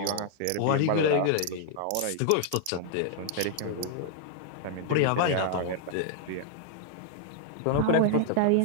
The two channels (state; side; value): different; both; correlation -0.01